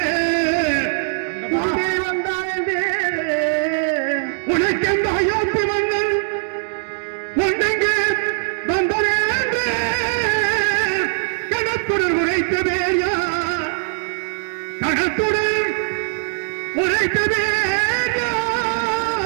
வந்தான் என்று உனக்கெந்த அயோத்தி மன்னன் ஒன்றெங்கு வந்தான் என்று கணத்துடன் உரைத்த வேயா, கணத்துடன் உரைத்த வேயா,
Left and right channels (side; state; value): left; silent; digital silence